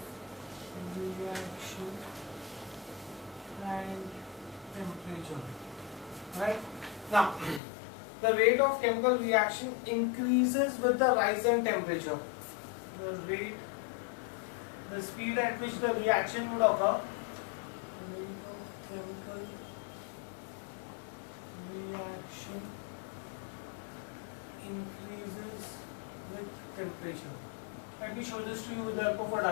reaction and temperature. Right? Now, the rate of chemical reaction increases with the rise in temperature. The speed at which the reaction would occur, rate of chemical reaction increases with temperature. Let me show this to you with the help of a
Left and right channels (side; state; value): right; drops out; at 7.6 s